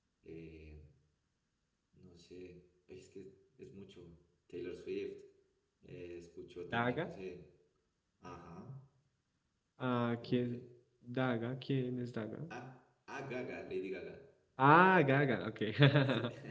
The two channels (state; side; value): identical; both; correlation 1.00